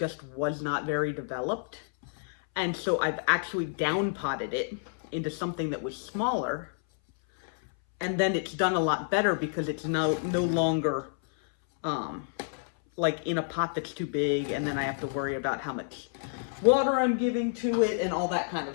was not very developed. And so I've actually down potted it into something that was smaller, and then it's done a lot better because it's no longer like in a pot that's too big, and then I have to worry about how much water I'm giving to it and all that kind of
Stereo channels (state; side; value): silent; right; 58 dB below the other